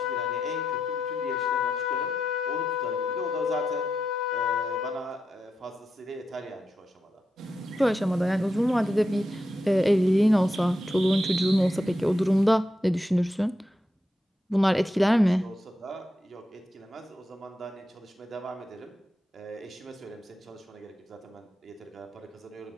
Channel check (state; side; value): normal; both; correlation 0.86